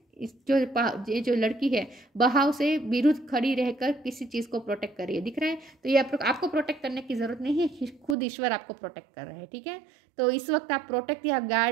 ये जो लड़की है बहाव से विरुद्ध खड़ी रहकर किसी चीज़ को प्रोटेक्ट कर रही है, दिख रहा है। तो ये आपको प्रोटेक्ट करने की ज़रूरत नहीं है, खुद ईश्वर आपको प्रोटेक्ट कर रहे हैं, ठीक है। तो इस वक्त आप प्रोटेक्ट या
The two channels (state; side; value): drops out; left; at 8.2 s